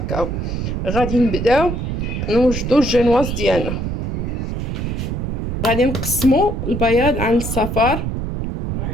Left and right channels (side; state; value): right; noise; rumble, 2 dB below the sound